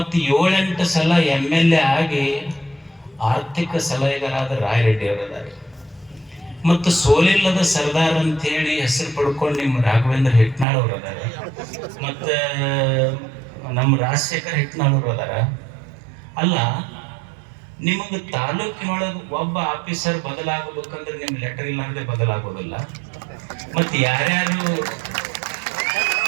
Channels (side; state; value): left; drops out; at 10.7 s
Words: 7-8 ಸಲ MLA ಆಗಿ ಆರ್ಥಿಕ ಸಲಹೆಗಾರಾದ ರಾಯರೆಡ್ಡಿ ಅವರಿದ್ದಾರೆ, ಮತ್ತು ಸೋಲಿಲ್ಲದ ಸರ್ದಾರ್ ಅಂತೇಳಿ ಹೆಸರು ಪಡ್ಕೊಂಡು ನಿಮ್ಮ ರಾಘವೇಂದ್ರ ಹಿಟ್ನಾಳ್ ಅವರು ಅದಾರ, ಮತ್ತು ನಮ್ಮ ರಾಜಶೇಖರ್ ಹಿಟ್ನಾಳ್ ಅವರು ಅದಾರ. ಅಲ್ಲ, ನಿಮಗೆ ತಾಲೂಕಿನೊಳಗೆ ಒಬ್ಬ ಆಫೀಸರ್ ಬದಲಾಗಬೇಕಂದ್ರೆ ನಿಮ್ಮ ಲೆಟರ್ ಇಲ್ಲಾಂದ್ರೆ ಬದಲಾಗೋದಿಲ್ಲ. ಮತ್ತು ಯಾರ್ಯಾರು